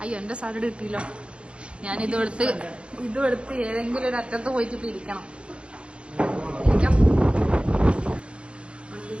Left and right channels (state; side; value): late; left; 0.058 ms